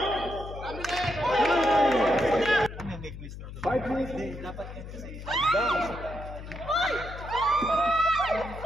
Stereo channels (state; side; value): noise; left; hum, 11 dB below the sound